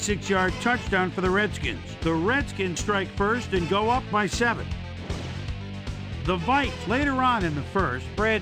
touchdown for the Redskins. The Redskins strike first and go up by 7. The Vikes later on in the first,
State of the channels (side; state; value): both; identical; correlation 1.00